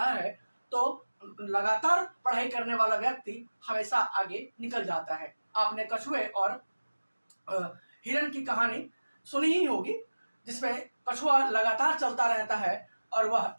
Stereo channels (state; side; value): inverted; both; correlation -1.00